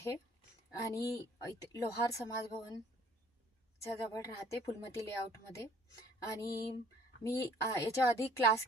आणि लोहार समाज भवनच्या जवळ राहते, फुलमती लेआउटमध्ये. आणि मी याच्या आधी क्लास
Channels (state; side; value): normal; both; correlation 0.56